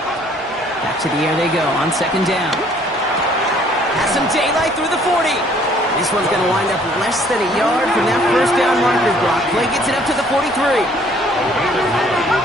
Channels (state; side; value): normal; both; correlation 0.60